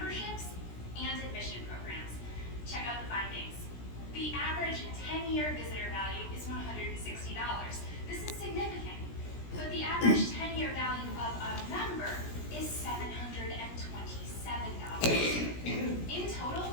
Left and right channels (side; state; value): right; late; 17 ms